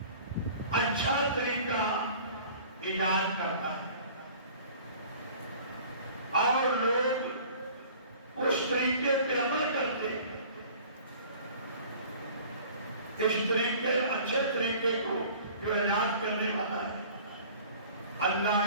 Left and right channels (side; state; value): both; inverted; correlation -0.47